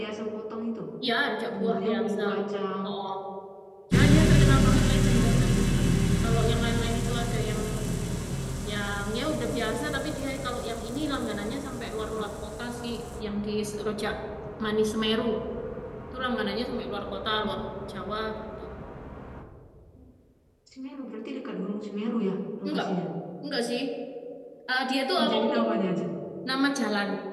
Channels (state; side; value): identical; both; correlation 1.00